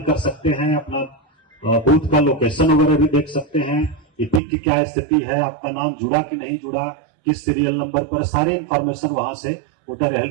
कर सकते हैं। अपना बूथ का लोकेशन वगैरह भी देख सकते हैं, इपिक की क्या स्थिति है, आपका नाम जुड़ा कि नहीं जुड़ा, किस सीरियल नंबर पर, सारे इंफॉर्मेशन वहां से वोटर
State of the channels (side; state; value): left; drops out; at 4.4 s